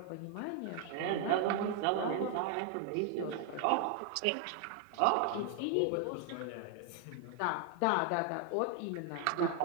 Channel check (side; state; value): both; different; correlation 0.00